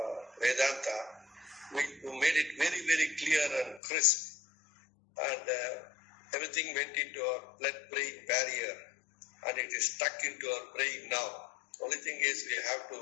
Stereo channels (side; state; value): right; drops out; at 3.8 s